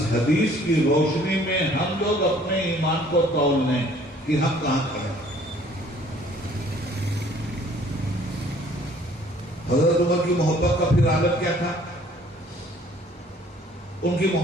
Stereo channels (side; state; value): both; normal; correlation 0.57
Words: حدیث کی روشنی میں ہم لوگ اپنے ایمان کو تول لیں کہ ہم کہاں کھڑے ہیں۔ حضرت عمر کی محبت کا پھر عالم کیا تھا؟ ان کی